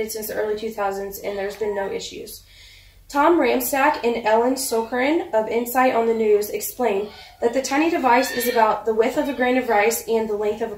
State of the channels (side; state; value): both; identical; correlation 1.00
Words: since the early 2000s, and there's been no issues. Tom Ramstack and Ellen Sokerin of Insight on the News explain that the tiny device is about the width of a grain of rice and the length of a